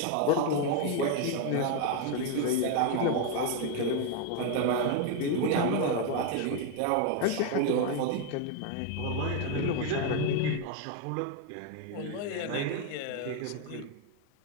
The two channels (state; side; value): different; both; correlation 0.01